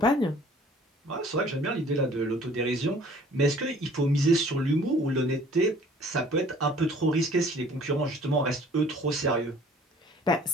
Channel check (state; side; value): normal; both; correlation 0.53